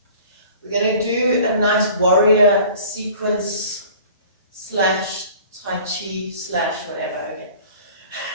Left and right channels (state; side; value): inverted; both; correlation -0.47